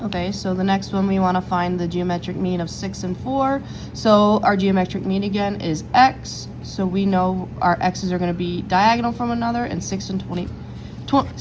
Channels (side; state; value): both; identical; correlation 1.00